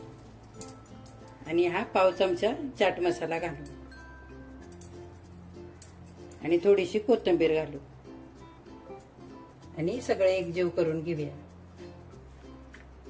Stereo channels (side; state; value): both; identical; correlation 1.00